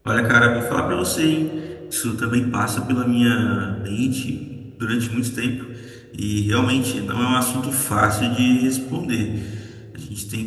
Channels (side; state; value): both; identical; correlation 1.00